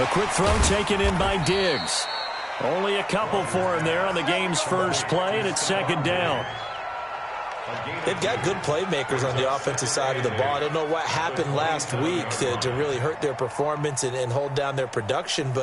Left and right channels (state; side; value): identical; both; correlation 1.00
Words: quick throw taken in by Diggs. Only a couple for him there on the game's first play, and it's second down. They've got good playmakers on the offensive side of the ball. I don't know what happened last week to really hurt their performance and hold down their production,